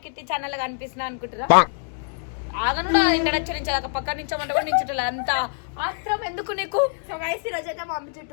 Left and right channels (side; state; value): right; silent; 62 dB below the other